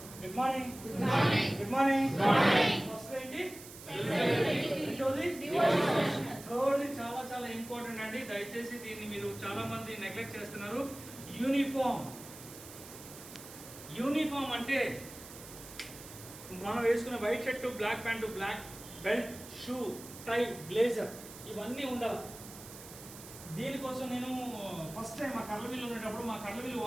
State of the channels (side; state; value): right; noise; hiss, 15 dB below the sound